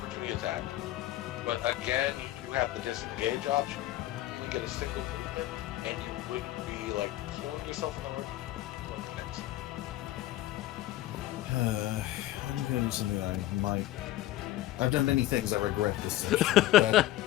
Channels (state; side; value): quieter; right; 15.2 dB